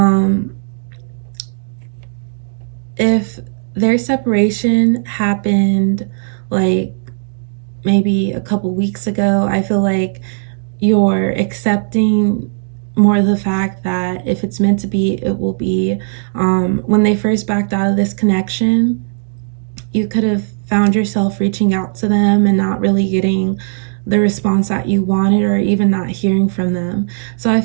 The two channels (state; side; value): silent; left; digital silence